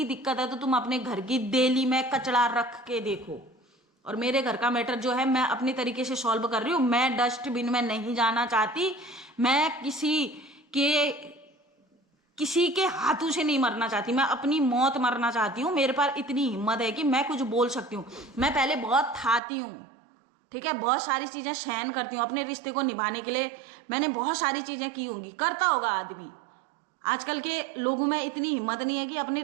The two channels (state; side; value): drops out; left; at 19.4 s